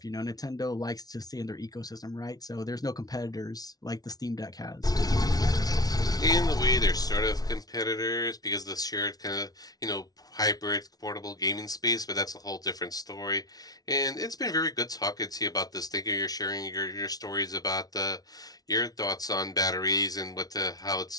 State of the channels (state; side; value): late; right; 0.19 ms